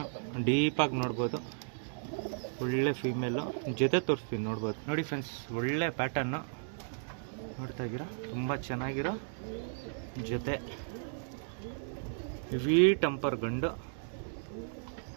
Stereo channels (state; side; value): silent; left; digital silence